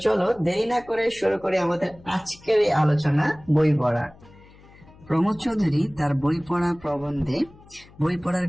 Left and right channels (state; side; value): noise; left; hum, 24 dB below the sound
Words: চলো দেরি না করে শুরু করি আমাদের আজকের এই আলোচনা, বই পড়া। প্রমথ চৌধুরী তার বই পড়া প্রবন্ধে বই পড়ার